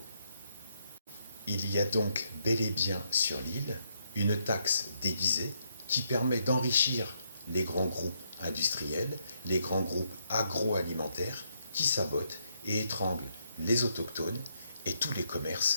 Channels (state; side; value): inverted; both; correlation -0.76